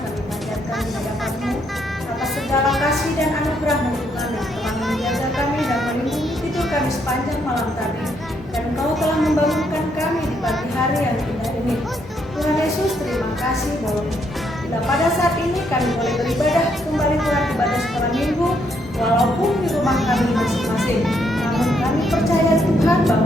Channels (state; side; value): normal; both; correlation 0.74